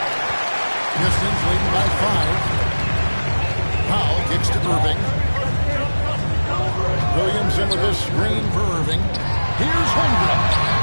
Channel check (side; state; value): both; inverted; correlation -1.00